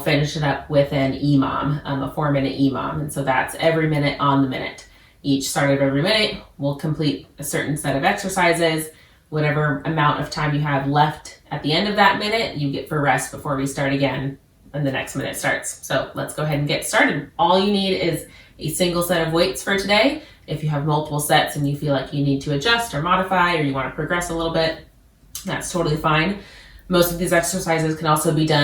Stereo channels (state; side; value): identical; both; correlation 1.00